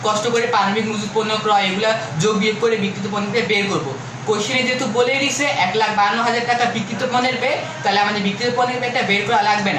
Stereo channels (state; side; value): identical; both; correlation 1.00